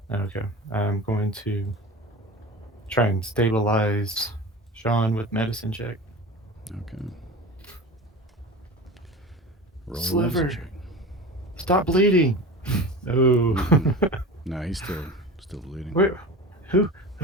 Okay. I'm going to try and stabilize Sean with medicine check. Okay. Roll a Sliver. medicine check. Stop bleeding. No. No, he's still bleeding. Wait, who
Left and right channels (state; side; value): normal; both; correlation 0.33